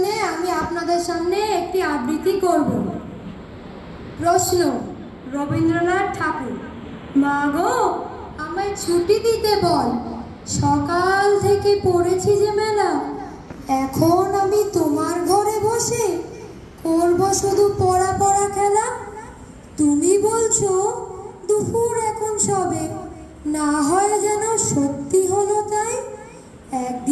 আমি আপনাদের সামনে একটি আবৃত্তি করব। প্রশ্ন: রবীন্দ্রনাথ ঠাকুর। মা গো, আমায় ছুটি দিতে বল, সকাল থেকে পড়েছি যে মেলা। এখন আমি তোমার ঘরে বসে করব শুধু পড়া পড়া খেলা। তুমি বলছো দুপুর এখন সবে, না হয় যেন সত্যি হলো তাই।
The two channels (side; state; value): both; identical; correlation 1.00